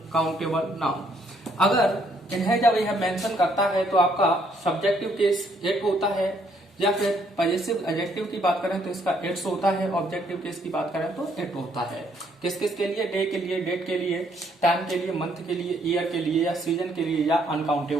नाउन। अगर इन्हें जब यह मेंशन करता है तो आपका सब्जेक्टिव केस एट होता है, या फिर पॉजिटिव एडजेक्टिव की बात करें तो इसका एट्स होता है, ऑब्जेक्टिव केस की बात करें तो एट होता है। किस किस के लिए, डे के लिए, डेट के लिए, टाइम के लिए, मंथ के लिए, ईयर के लिए, या सीजन के लिए, या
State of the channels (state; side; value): normal; both; correlation 0.69